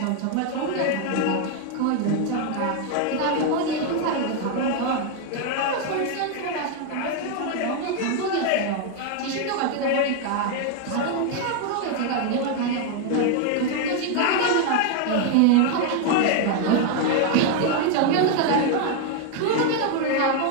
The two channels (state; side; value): different; both; correlation 0.01